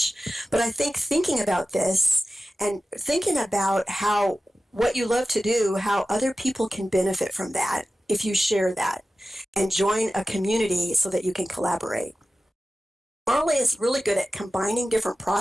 But I think thinking about this and thinking about what you love to do, how other people can benefit from that if you share that, and join a community so that you can collaborate. Marley is really good at combining different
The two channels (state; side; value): normal; both; correlation 0.95